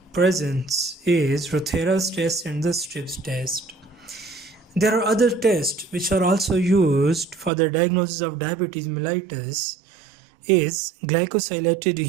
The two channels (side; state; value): left; drops out; at 7.5 s